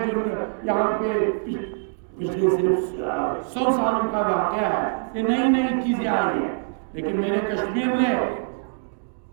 جو یہاں پہ پچھلے صرف 100 سالوں کا واقعہ ہے، یہ نئی نئی چیزیں آئی ہیں، لیکن میرے کشمیر نے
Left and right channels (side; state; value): left; silent; digital silence